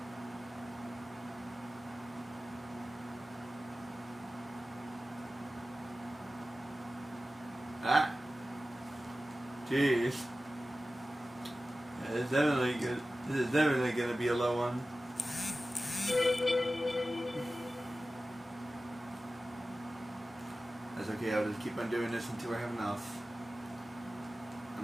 Ah, jeez. It's definitely good. This is definitely gonna be a low one. That's okay. I'll just keep on doing this until I have enough. I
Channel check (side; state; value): both; normal; correlation 0.95